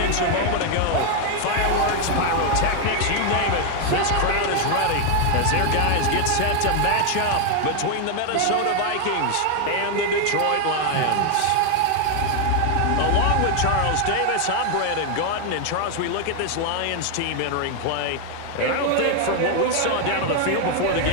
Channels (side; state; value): both; different; correlation 0.00